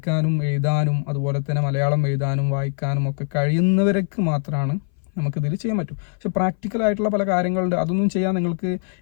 എഴുതാനും അതുപോലെ തന്നെ മലയാളം എഴുതാനും വായിക്കാനും ഒക്കെ കഴിയുന്നവർക്ക് മാത്രമാണ് നമുക്കിതിൽ ചെയ്യാൻ പറ്റും. പക്ഷെ പ്രാക്ടിക്കലായിട്ടുള്ള പല കാര്യങ്ങളുണ്ട്, അതൊന്നും ചെയ്യാൻ നിങ്ങൾക്ക്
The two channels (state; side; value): silent; right; 59 dB below the other